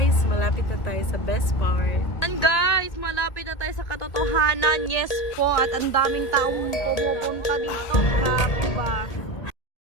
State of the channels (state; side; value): late; right; 1.8 ms